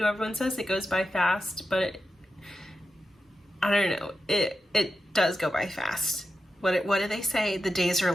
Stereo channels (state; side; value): normal; both; correlation 0.90